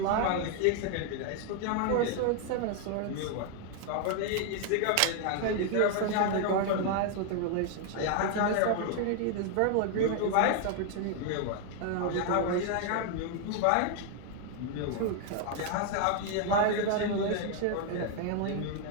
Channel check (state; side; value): different; both; correlation 0.00